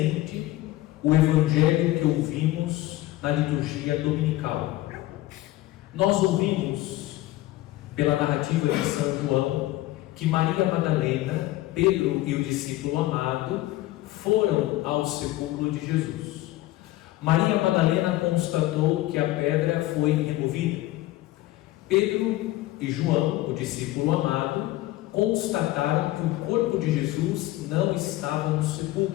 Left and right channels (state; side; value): quieter; right; 16.8 dB